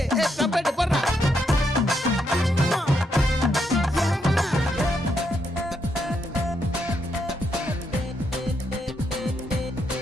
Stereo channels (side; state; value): both; normal; correlation 0.78